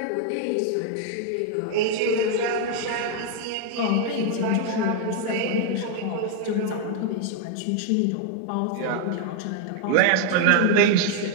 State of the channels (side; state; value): both; different; correlation 0.00